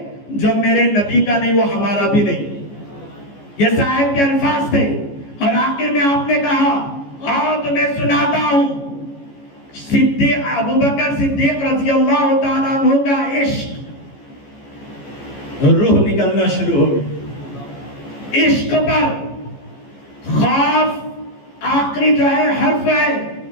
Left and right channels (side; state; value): right; late; 14 ms